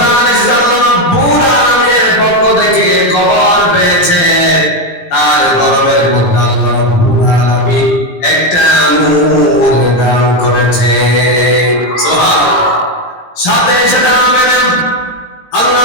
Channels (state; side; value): late; right; 17 ms